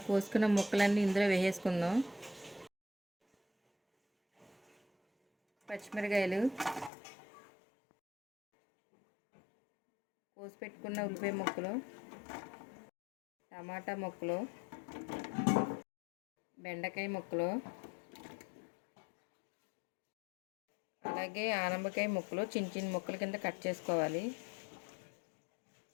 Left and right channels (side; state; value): right; drops out; at 6.9 s